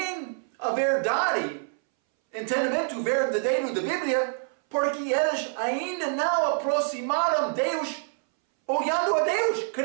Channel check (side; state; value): left; silent; 61 dB below the other